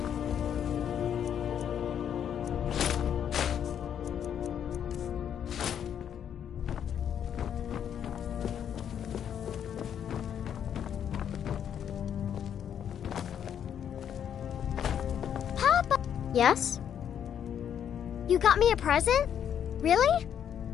Yes? You got me a present? Really?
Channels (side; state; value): right; quieter; 8.9 dB